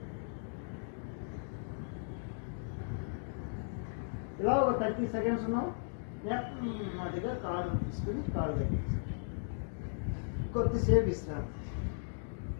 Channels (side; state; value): right; silent; digital silence